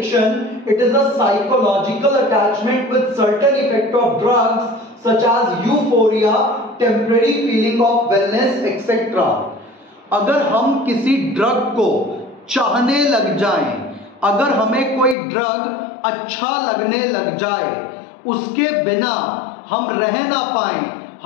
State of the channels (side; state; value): right; drops out; at 15.2 s